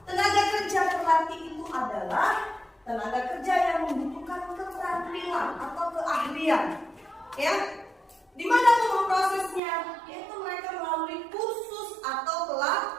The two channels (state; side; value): drops out; left; at 9.6 s